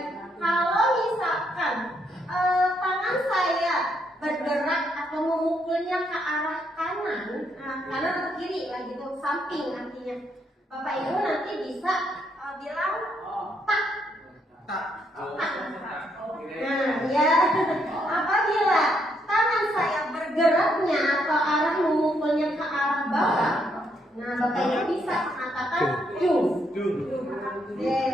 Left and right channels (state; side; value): normal; both; correlation 0.75